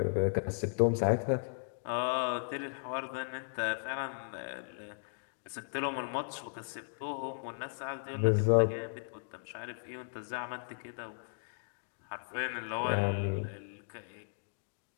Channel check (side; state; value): right; silent; digital silence